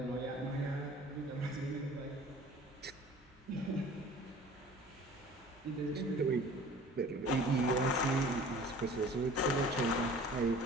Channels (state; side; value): normal; both; correlation 0.46